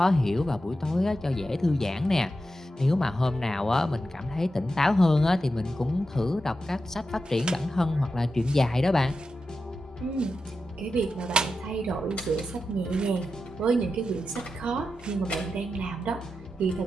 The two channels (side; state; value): both; normal; correlation 0.89